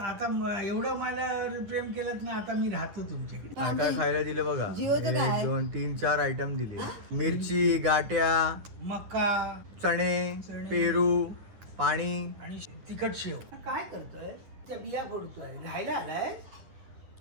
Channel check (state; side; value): late; left; 10 ms